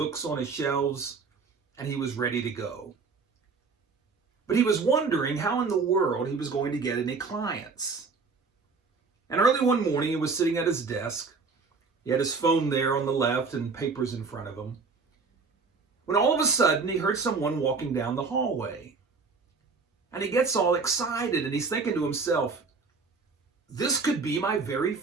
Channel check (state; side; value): quieter; left; 4.6 dB